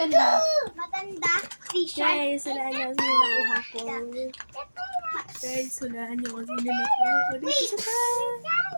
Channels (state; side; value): inverted; both; correlation -1.00